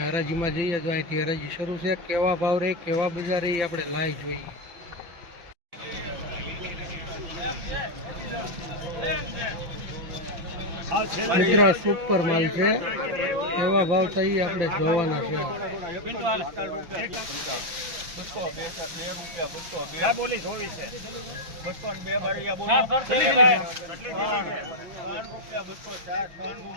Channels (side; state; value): left; late; 5.9 ms